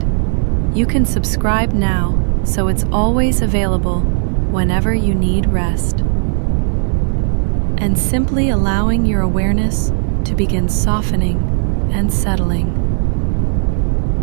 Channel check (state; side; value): silent; left; digital silence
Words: you can subscribe now so it's always available whenever you need rest. And simply allowing your awareness to begin softening and settling.